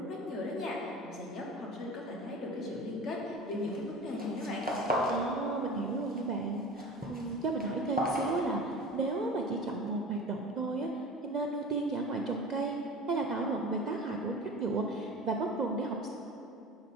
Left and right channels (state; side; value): normal; both; correlation 0.36